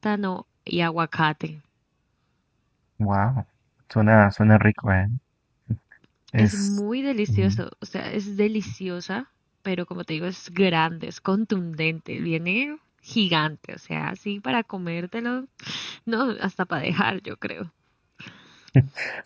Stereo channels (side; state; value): both; identical; correlation 1.00